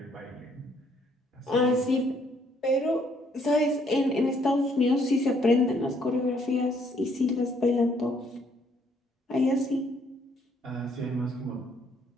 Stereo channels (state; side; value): normal; both; correlation 0.67